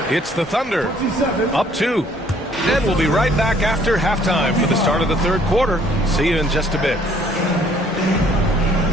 It's the Thunder, up 2. And we'll be right back after halftime for the start of the third quarter. See you in just a bit.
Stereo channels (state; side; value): normal; both; correlation 0.61